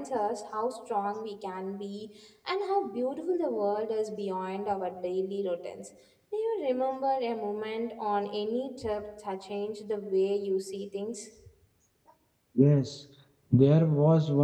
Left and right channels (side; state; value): both; identical; correlation 1.00